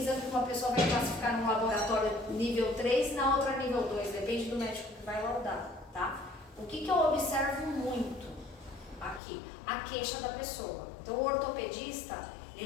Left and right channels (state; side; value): drops out; right; at 9.2 s